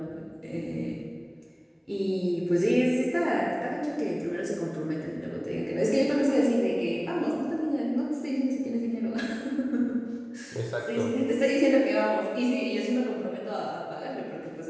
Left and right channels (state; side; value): identical; both; correlation 1.00